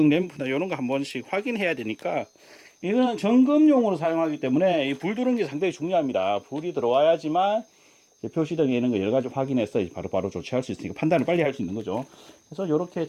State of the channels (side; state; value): both; identical; correlation 1.00